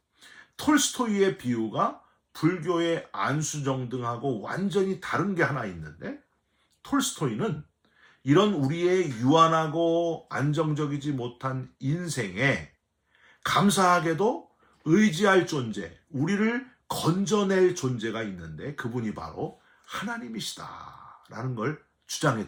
톨스토이의 비유가 불교의 안수정등하고 완전히 다른 게 하나 있는데 톨스토이는 이런 우리의 유한하고 안정적이지 못한 인생에 감사하게도 의지할 존재, 우리를 건져낼 존재가 있는데 그분이 바로 하나님이시다라는 걸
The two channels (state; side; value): identical; both; correlation 1.00